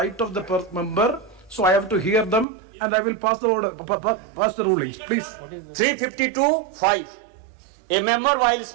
of the member. So I have to hear them, and I will pass the order, pass the rulings. Please. 352(5). A member while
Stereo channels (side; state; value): left; drops out; at 2.5 s